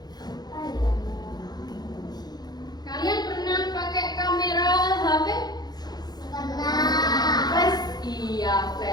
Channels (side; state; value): right; late; 0.19 ms